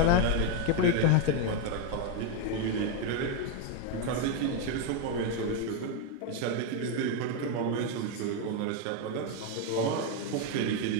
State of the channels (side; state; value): both; different; correlation 0.02